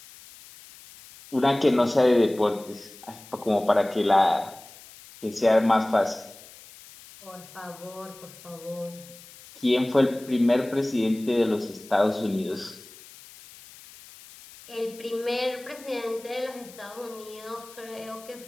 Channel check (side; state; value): left; noise; hiss, 20 dB below the sound